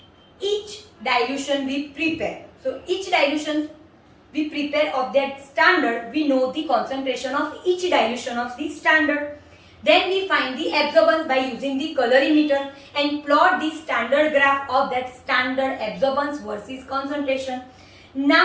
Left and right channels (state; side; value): identical; both; correlation 1.00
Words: each dilution we prepare. So each dilution we prepare of that standard, we know the concentration of each dilution of the standard. Then we find the absorbance by using the colorimeter and plot the standard graph of that standard absorbance versus concentration.